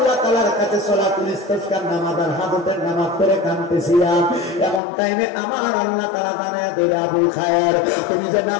তাআলার কাছে সালাতুল ইস্তিসকার নামাজ আর হাজতের নামাজ পড়ে কাঁদতেছিলাম, এমন টাইমে আমার আল্লাহ তাআলা জানায় দিল, আবুল খায়ের তুমি যে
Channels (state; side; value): drops out; right; at 4.8 s